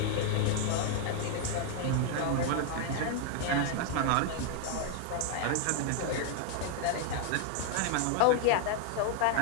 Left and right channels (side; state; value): both; different; correlation 0.00